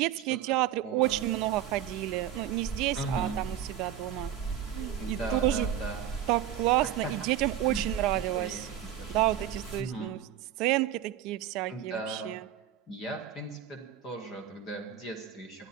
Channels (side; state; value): left; quieter; 10.6 dB